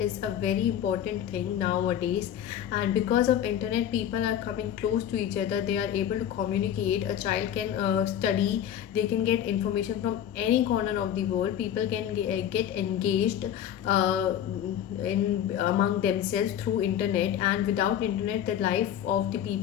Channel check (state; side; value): quieter; right; 10.2 dB